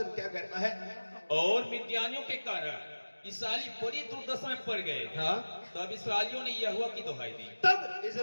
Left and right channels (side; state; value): both; inverted; correlation -1.00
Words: क्या कहता है? और मिद्यानियों के कारण इस्राएली बड़ी दुर्दशा में पड़ गए। हाँ, तब इस्राएलियों ने यहोवा की दुहाई दी। तब